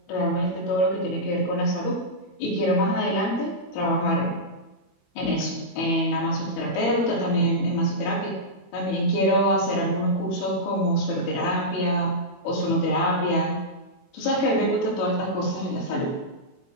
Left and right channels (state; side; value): late; right; 21 ms